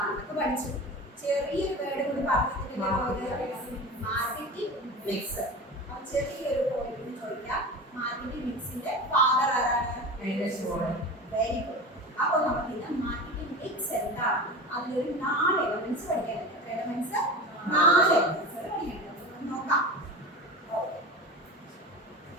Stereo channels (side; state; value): both; normal; correlation 0.30